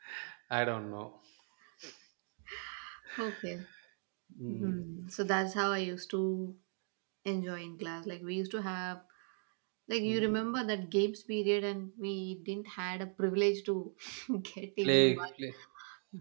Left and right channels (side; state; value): left; silent; 52 dB below the other